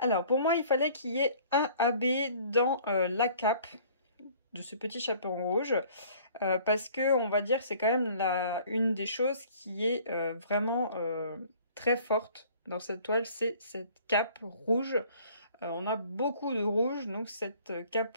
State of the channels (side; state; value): both; inverted; correlation -0.53